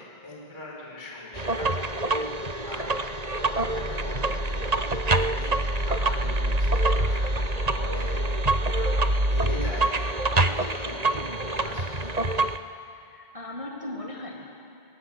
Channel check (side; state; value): left; late; 1.8 ms